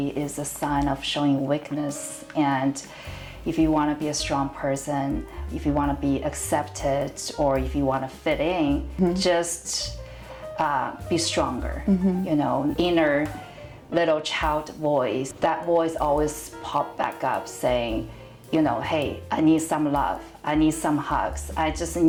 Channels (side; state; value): both; identical; correlation 1.00